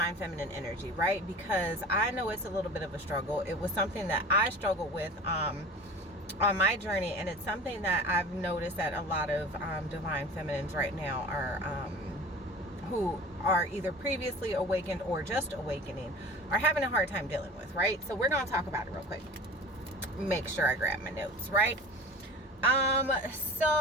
feminine energy, right? Because I know it's a little bit of a struggle. It was something that I struggled with on my journey, and it's something that I've noticed that a lot of divine feminines right now are who are either previously awakened or just awakening are having a hard time dealing with, right? So we're going to talk about it real quick. Make sure I grab my notes, right? On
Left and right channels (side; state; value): both; normal; correlation 0.38